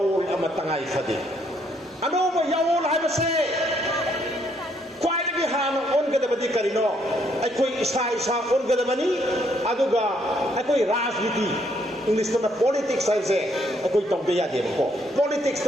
ꯑꯃ ꯇꯉꯥꯏ ꯐꯗꯦ ꯑꯅꯧꯕ ꯌꯥꯑꯣꯜ ꯍꯥꯏꯕꯁꯦ ꯈ꯭ꯋꯥꯏꯗꯒꯤ ꯍꯥꯟꯅ ꯑꯣꯟꯒꯗꯕꯗꯤ ꯀꯔꯤꯅꯣ ꯑꯩꯈꯣꯏ ꯏꯁꯥ ꯑꯣꯟꯒꯗꯕꯅꯤ ꯑꯗꯨꯒ ꯑꯩꯈꯣꯏ ꯔꯥꯖꯅꯤꯇꯤ ꯏꯪꯂꯤꯁꯇꯅ ꯄꯣꯂꯤꯇꯤꯛꯁ ꯍꯥꯏꯕꯁꯦ ꯑꯩꯈꯣꯏ ꯇꯧꯗ ꯌꯥꯗꯦꯕꯀꯣ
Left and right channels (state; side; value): normal; both; correlation 0.71